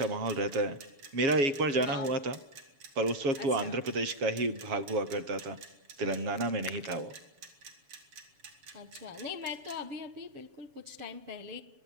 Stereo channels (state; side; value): late; left; 7.1 ms